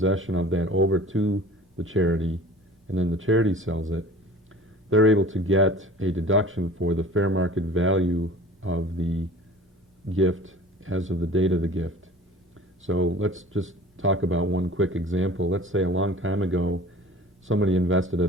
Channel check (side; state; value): both; normal; correlation 0.43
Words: of that over to the charity, and then the charity sells it, they're able to get a deduction for the fair market value of the gift as of the date of the gift. So let's just talk about one quick example. Let's say a long time ago, somebody invested